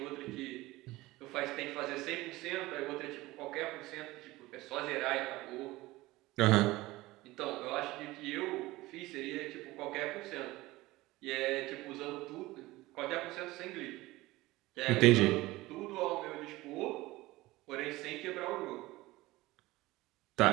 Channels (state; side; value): quieter; left; 19.2 dB